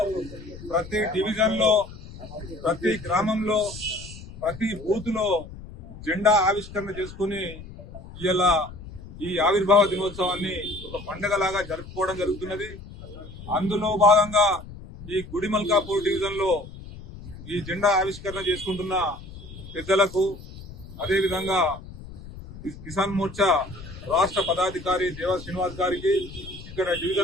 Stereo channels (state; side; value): noise; left; rumble, 15 dB below the sound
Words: ప్రతి డివిజన్ లో, ప్రతి గ్రామంలో, ప్రతి బూత్ లో జెండా ఆవిష్కరణ చేసుకుని ఇలా ఈ ఆవిర్భావ దినోత్సవాన్ని ఒక పండుగలాగా జరుపుకోవడం జరుగుతున్నది. అందులో భాగంగా ఈ గుడిమల్కాపూర్ డివిజన్ లో ఈ జెండా ఆవిష్కరణ చేసుకుంటున్న పెద్దలకు, అదేవిధంగా కిసాన్ మోర్చా రాష్ట్ర పదాధికారి దేవ శ్రీనివాస్ గారికి, ఇక్కడ